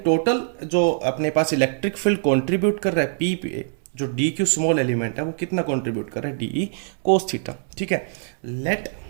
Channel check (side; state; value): left; silent; 61 dB below the other